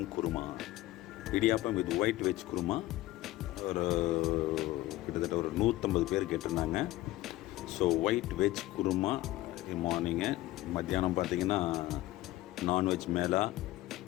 kurma, idiyappam with white veg kurma. ஒரு கிட்டத்தட்ட ஒரு 150 பேர் கேட்டிருந்தாங்க. So white veg kurma morning. மத்தியானம் பார்த்திங்கன்னா நான்வெஜ் மேலா,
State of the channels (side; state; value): right; quieter; 17.1 dB